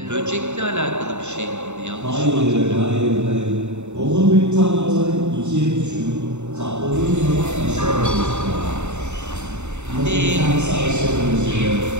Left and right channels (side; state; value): left; late; 0.83 ms